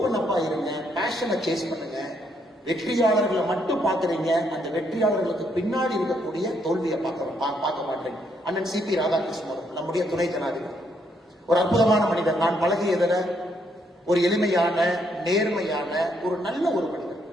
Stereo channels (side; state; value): both; normal; correlation 0.73